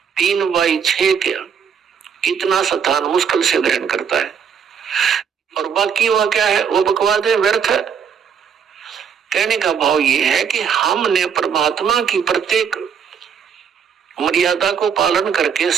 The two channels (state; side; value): quieter; left; 7.2 dB